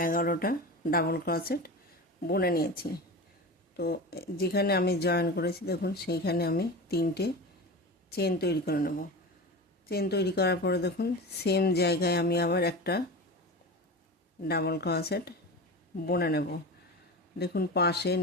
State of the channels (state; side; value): normal; both; correlation 0.29